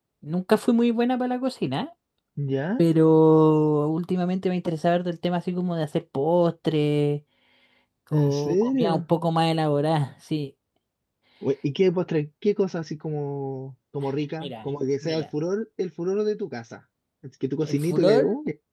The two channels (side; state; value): both; identical; correlation 1.00